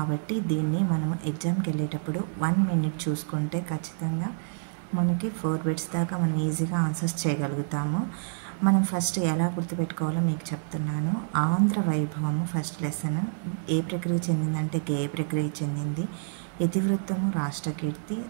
దీన్ని మనం ఎగ్జామ్కి వెళ్ళేటప్పుడు 1 మినిట్ చూసుకుంటే ఖచ్చితంగా మనకి 4 బిట్స్ దాకా మనం ఈజీగా ఆన్సర్స్ చేయగలుగుతాము. మనం ఫస్ట్ ఎలా గుర్తుపెట్టుకోవాలో మీకు చెప్తున్నాను. ఆంధ్ర వైభవము ఫస్ట్ లెసన్ ఏ ప్రక్రియ చెందిందంటే గేయ ప్రక్రియ చెందింది. ఇతివృత్తము రాష్ట్రకీర్తి,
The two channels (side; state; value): left; silent; digital silence